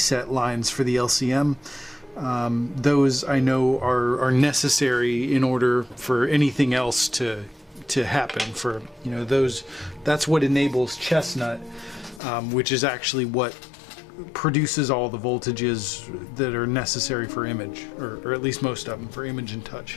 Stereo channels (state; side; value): drops out; right; at 12.2 s